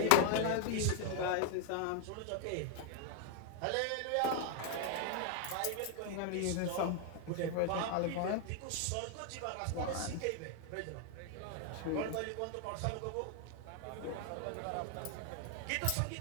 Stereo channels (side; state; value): both; different; correlation 0.00